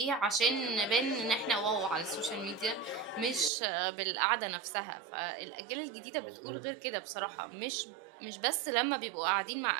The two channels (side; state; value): left; drops out; at 3.5 s